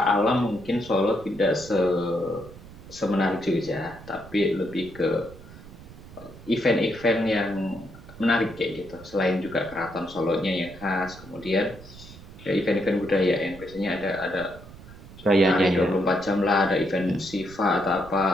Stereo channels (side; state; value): right; noise; rumble, 18 dB below the sound